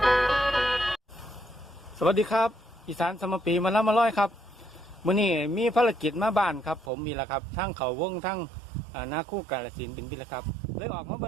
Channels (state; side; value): drops out; left; at 6.9 s